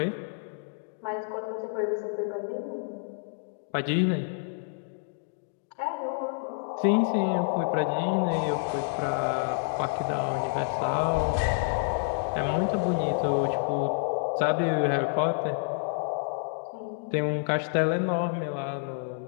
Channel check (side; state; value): right; silent; digital silence